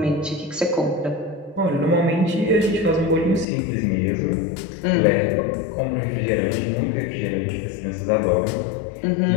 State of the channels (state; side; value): drops out; right; at 3.5 s